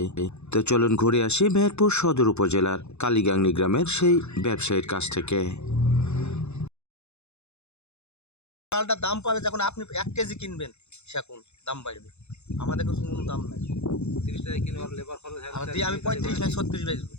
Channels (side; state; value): right; late; 0.81 ms